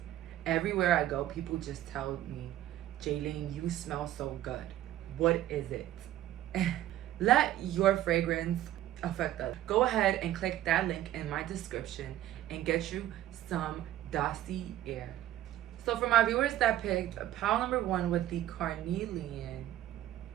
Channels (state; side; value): quieter; left; 13.4 dB